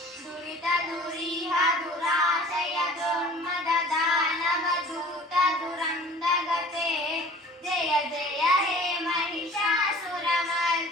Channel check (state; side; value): normal; both; correlation 0.47